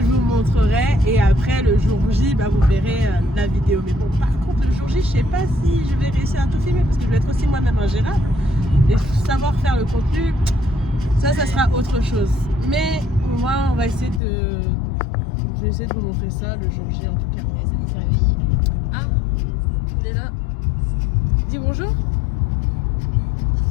vous montrerai. Et après, le jour J, bah, vous verrez la vidéo. Mais bon, par contre, le jour J, je sais pas si je vais réussir à tout filmer parce que je vais être aussi moi-même ingérable. Et savoir faire le contenu, ça sera autre chose. Mais moi, on va essayer de. Je vais essayer de vous montrer ça le jour J en tout cas. Personne ne s'est réveillé. Ah, on est là. Dis bonjour.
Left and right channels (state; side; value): drops out; right; at 14.2 s